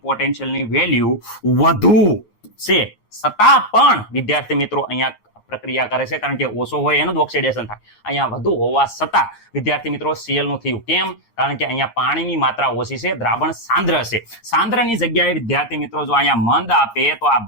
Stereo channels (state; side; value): late; right; 8.7 ms